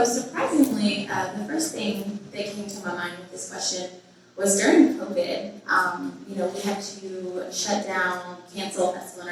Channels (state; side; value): identical; both; correlation 1.00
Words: surprisingly, the first thing that came to my mind with this question was during COVID. We had to shut down, cancel Festival